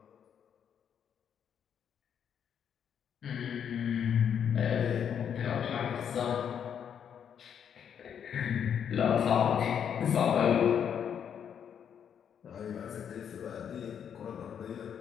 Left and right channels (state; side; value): quieter; right; 8.3 dB